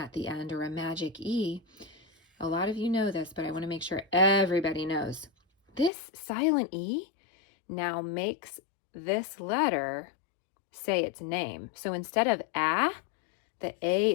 the end or a magic E, a lot of you know this, but I want to make sure everybody knows. This silent E now makes this letter say its name. So instead of A, the A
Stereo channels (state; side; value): drops out; right; at 5.9 s